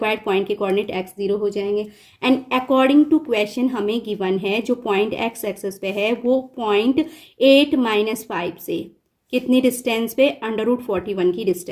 पॉइंट के कोऑर्डिनेट एक्स 0 हो जाएंगे। एंड अकॉर्डिंग टू क्वेश्चन हमें गिवन है जो पॉइंट एक्स एक्सेस पे है वो पॉइंट 8 - 5 से कितनी डिस्टेंस पे? √41 की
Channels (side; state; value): both; identical; correlation 1.00